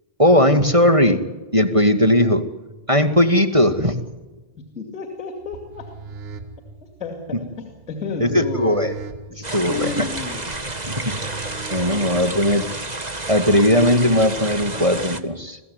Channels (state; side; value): late; left; 2.0 ms